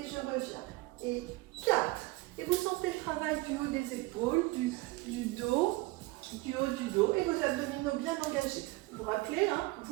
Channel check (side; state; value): left; quieter; 20.9 dB